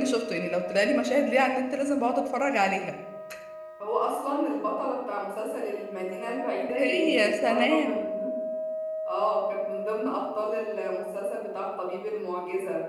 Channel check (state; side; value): identical; both; correlation 1.00